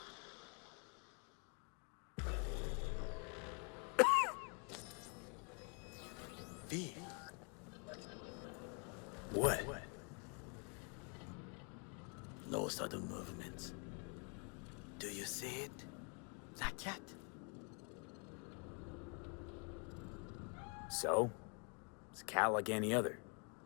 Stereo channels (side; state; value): right; quieter; 37.2 dB